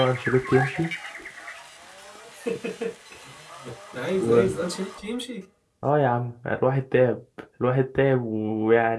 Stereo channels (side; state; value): both; identical; correlation 1.00